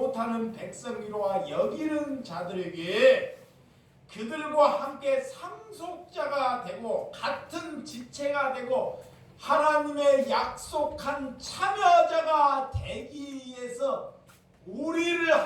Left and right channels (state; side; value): identical; both; correlation 1.00